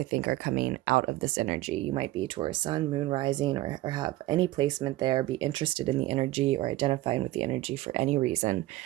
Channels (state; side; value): quieter; left; 16.7 dB